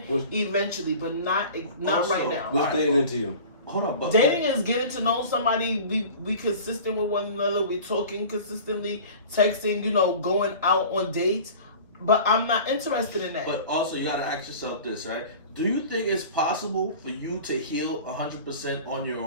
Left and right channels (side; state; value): both; inverted; correlation -0.40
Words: eventually, but not Also, right now. What's dating into you? Hold on, but Dating is getting to know somebody. We consistent with one another. We talking consistently, texting. You know, going out on dates. But I'm not interested in that. But also, you gotta ask yourself this, right? Do you think it's possible for you to heal 100% on your